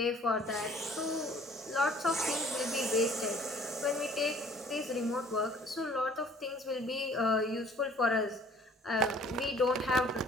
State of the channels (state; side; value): normal; both; correlation 0.54